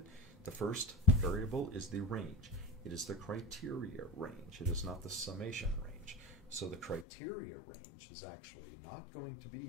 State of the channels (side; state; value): right; drops out; at 7.1 s